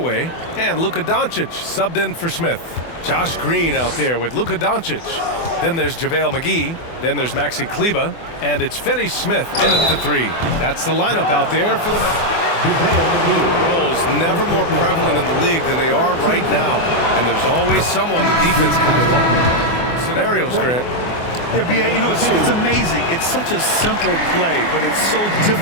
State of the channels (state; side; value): late; right; 24 ms